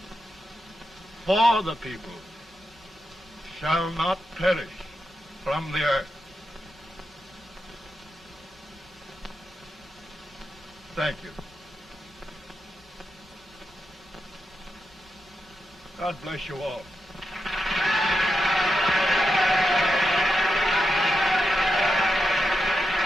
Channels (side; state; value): both; normal; correlation 0.86